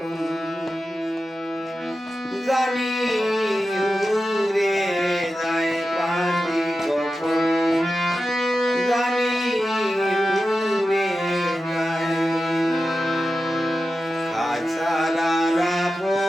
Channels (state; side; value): normal; both; correlation 0.92